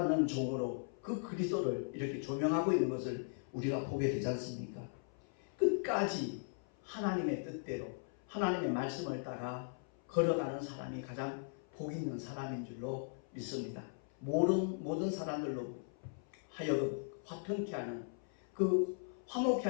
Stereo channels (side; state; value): right; silent; 52 dB below the other